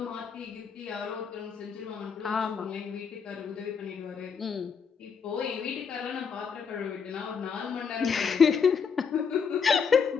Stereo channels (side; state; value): right; quieter; 6.2 dB